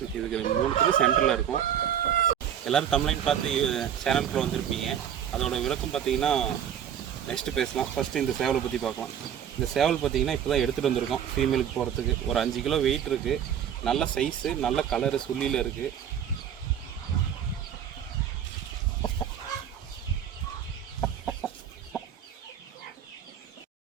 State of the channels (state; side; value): quieter; left; 9.2 dB